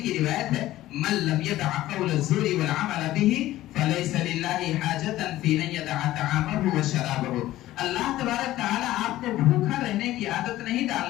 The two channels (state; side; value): quieter; right; 15.3 dB